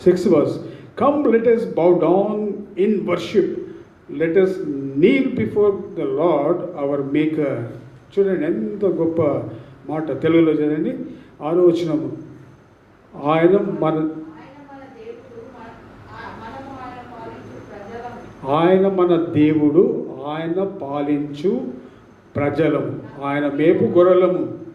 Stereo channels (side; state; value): both; identical; correlation 1.00